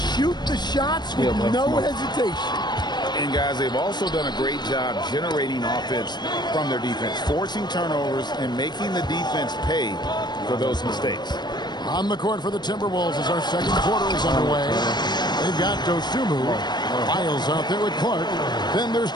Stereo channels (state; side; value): late; right; 0.21 ms